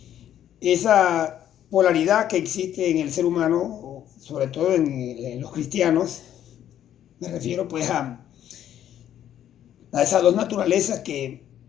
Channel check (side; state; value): right; quieter; 10.9 dB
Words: esa polaridad que existe en el ser humano, sobre todo en los cristianos. Me refiero pues a esas dos naturalezas que